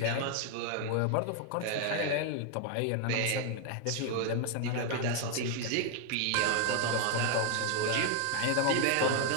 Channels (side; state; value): both; different; correlation 0.00